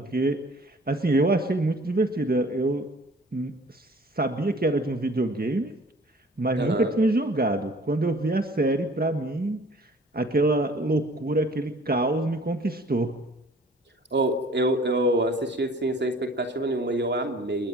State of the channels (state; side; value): normal; both; correlation 0.51